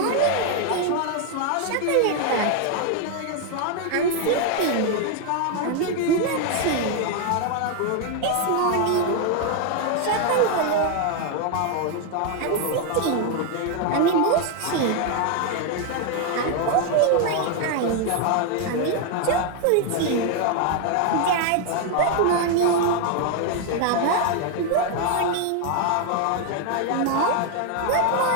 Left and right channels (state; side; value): different; both; correlation 0.01